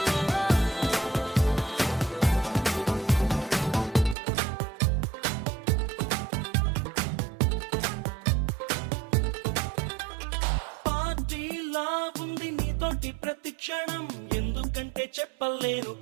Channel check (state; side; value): drops out; left; at 4.2 s